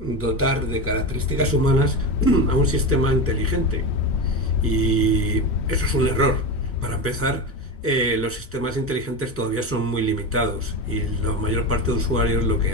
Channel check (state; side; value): normal; both; correlation 0.20